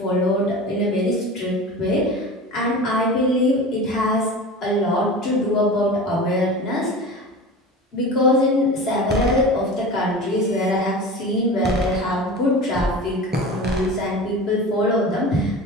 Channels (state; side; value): normal; both; correlation 0.33